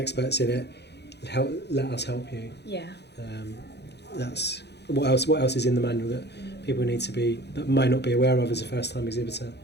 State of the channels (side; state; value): right; late; 0.49 ms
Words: in it. Let us help you. Yeah. That's what else is in the manual that people need to that may not be aware of as a first time exhibitor.